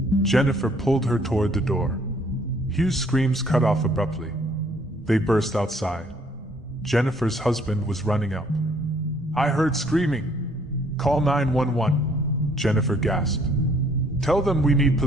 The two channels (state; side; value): normal; both; correlation 0.63